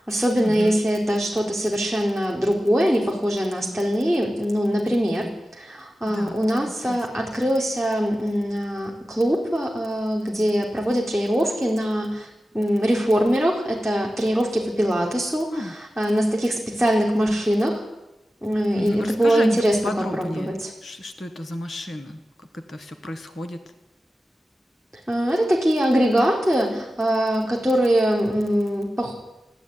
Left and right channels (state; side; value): normal; both; correlation 0.94